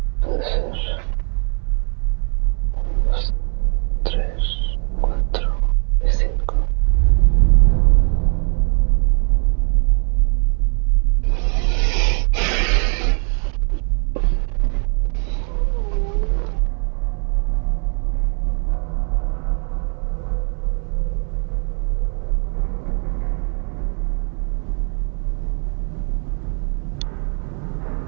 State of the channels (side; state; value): left; quieter; 39.8 dB